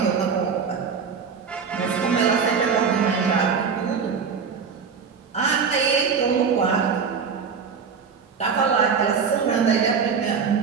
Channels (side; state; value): left; quieter; 6.0 dB